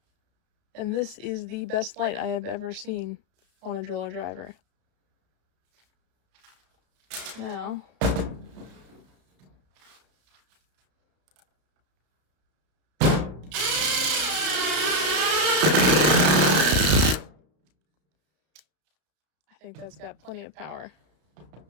And this is the best light I have ever seen on a driller driver. Now, I think that's got plenty of power.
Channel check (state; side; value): late; left; 33 ms